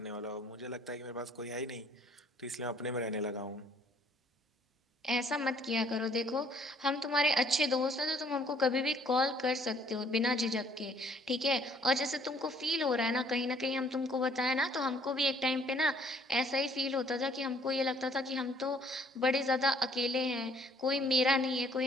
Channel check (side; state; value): both; normal; correlation 0.61